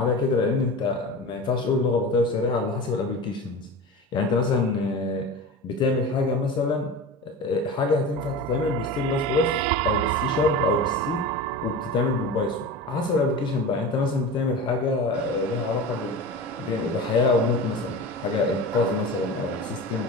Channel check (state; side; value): normal; both; correlation 0.30